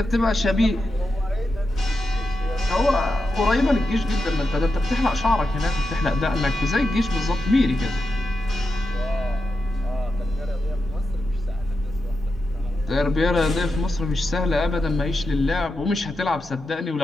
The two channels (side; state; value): both; normal; correlation 0.88